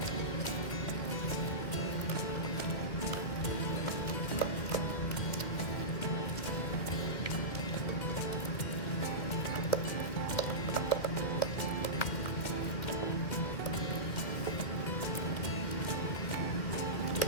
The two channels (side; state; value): right; late; 2.1 ms